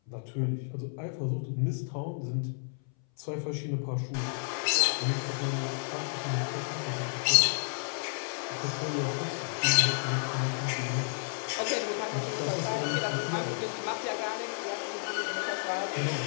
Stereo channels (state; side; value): silent; right; 57 dB below the other